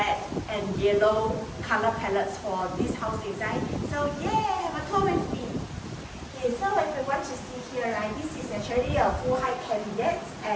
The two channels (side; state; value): both; identical; correlation 1.00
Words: and yellow color palettes for this house design. So yeah, have a tour with me. Okay, so if you want to see here, right, this is actually a full height cabinet